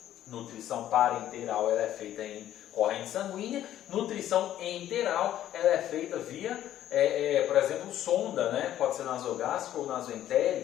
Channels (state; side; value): quieter; right; 12.1 dB